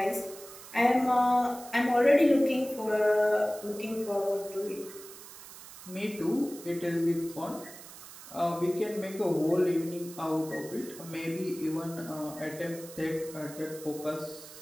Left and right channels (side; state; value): right; noise; hiss, 16 dB below the sound